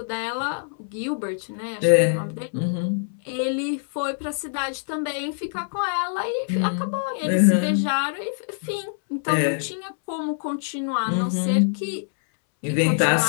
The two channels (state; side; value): silent; right; 62 dB below the other